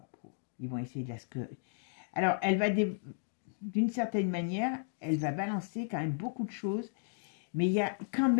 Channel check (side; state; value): right; silent; digital silence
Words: Ils vont essayer de la... Alors, elle va... D'une certaine manière, elle va balancer quand même beaucoup de choses. Mais il y a quand